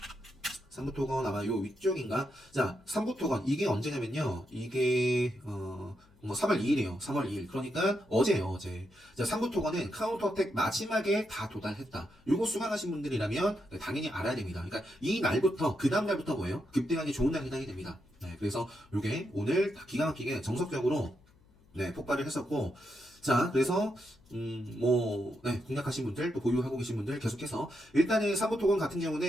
3부 토건 아마 요 위쪽인가? 자, 3부 토건 이게 언제냐면요. 이게 뭐 3월 2일이에요. 3월 2일. 그러니까 어제예요, 어제. 자, 3부 토건은 카운터텍 마지막에 다 도달했다. 요거 수강하신 분들이라면 당연히 알아야 됩니다. 그러니까 이 날부터 그 다음 날부터 뭐예요? 급등하기 좋은 날이 해당이 됩니다. 네, 그래서 요게 오늘 기가 막히게 정석적으로 네, 폭발을 했었고 자, 그래서 네, 공략하신 분들 또 보유하고 계신 분들 계속해서 일단은 3부 토건 같은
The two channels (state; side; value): noise; left; hum, 29 dB below the sound